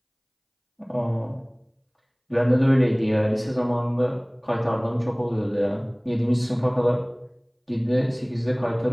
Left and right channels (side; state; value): both; identical; correlation 1.00